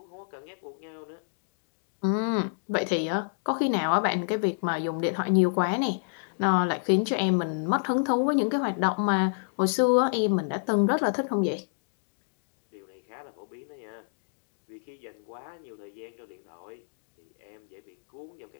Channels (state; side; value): silent; right; digital silence